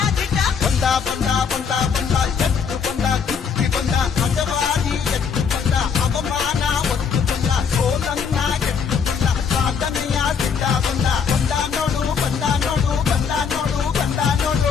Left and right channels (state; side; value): quieter; right; 6.4 dB